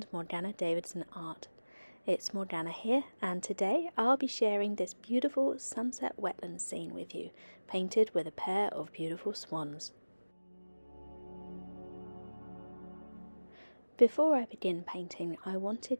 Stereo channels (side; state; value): both; inverted; correlation -1.00